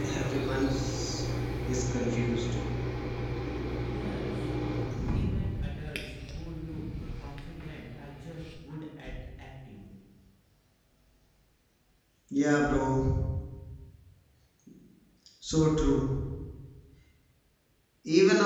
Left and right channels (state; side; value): identical; both; correlation 1.00